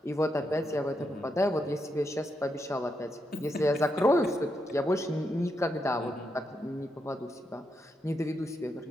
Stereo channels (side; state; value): both; normal; correlation 0.83